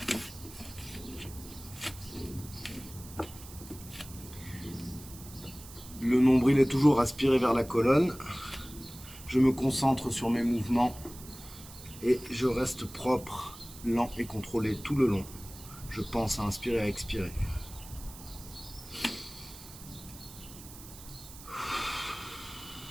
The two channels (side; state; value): right; noise; hiss, 16 dB below the sound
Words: Le nombril est toujours aspiré vers la colonne. Je me concentre sur mes mouvements et je reste propre, lent et contrôlé tout le long. Je pense à inspirer et à expirer.